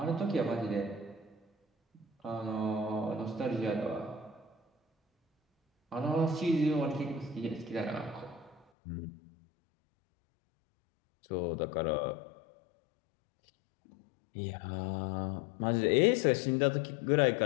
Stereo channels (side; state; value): right; drops out; at 8.7 s